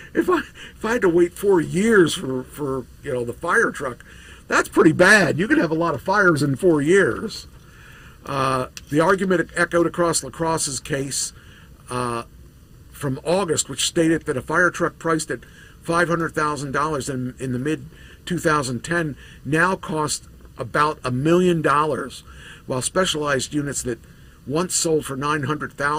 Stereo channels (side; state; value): both; identical; correlation 1.00